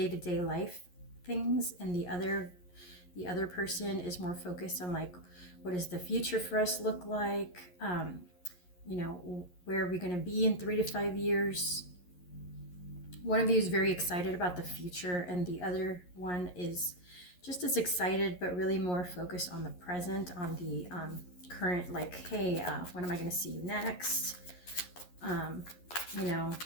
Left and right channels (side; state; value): right; late; 11 ms